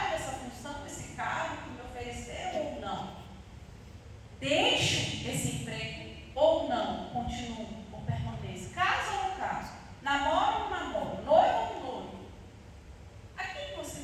essa função, esse cargo que me ofereceu ou não? Deixo esse emprego ou não? Continuo ou permaneço? Caso ou não caso? Namoro ou não namoro? Noivo ou não noivo? A quem você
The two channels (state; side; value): identical; both; correlation 1.00